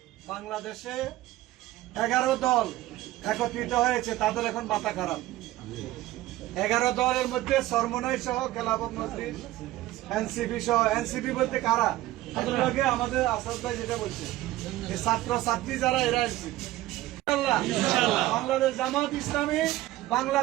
বাংলাদেশে 11 দল একত্রিত হয়েছে, তাদের এখন মাথা খারাপ। 11 দলের মধ্যে সরমনাই সহ খেলাফত মজলিস, এনসিপি সহ। এনসিপি বলতে কারা? আগে আমাদের আসাদ ভাই যেটা বলছে, এই ছাত্র ছাত্রী যারা, এরা এনসিপি। বাংলাদেশ জামাত ইসলামী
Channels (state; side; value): quieter; left; 16.2 dB